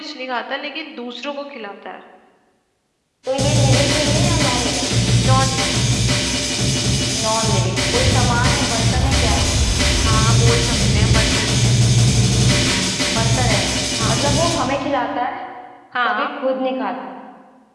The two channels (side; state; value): both; identical; correlation 1.00